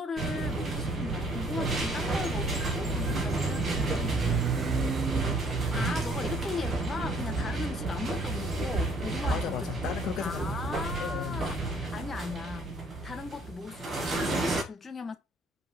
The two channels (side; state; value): both; normal; correlation 0.60